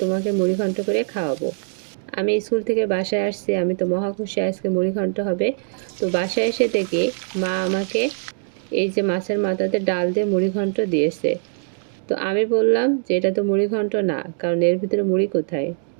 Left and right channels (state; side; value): silent; left; digital silence